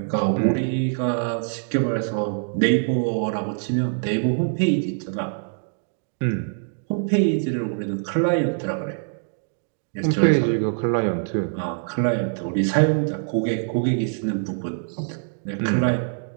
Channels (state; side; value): silent; left; digital silence